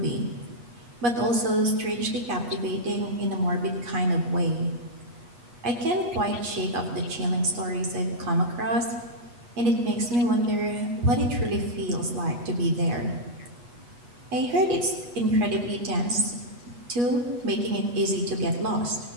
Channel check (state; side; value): late; left; 8.2 ms